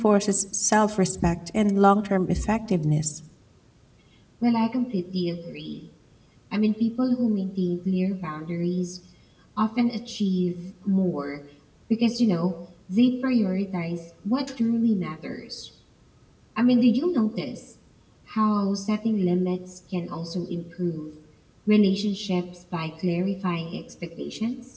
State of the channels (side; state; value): both; identical; correlation 1.00